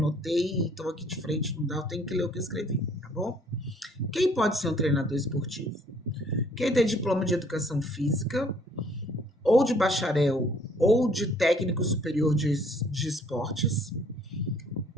e estou aqui de frente, não dá, eu tenho que ler o que eu escrevi, tá bom? Quem pode ser um treinador esportivo? Quem tem diploma de educação física, ou de bacharel, ou de técnico superior de esportes.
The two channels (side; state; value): both; normal; correlation 0.60